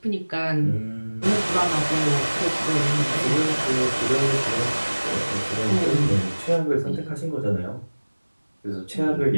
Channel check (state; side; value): inverted; both; correlation -1.00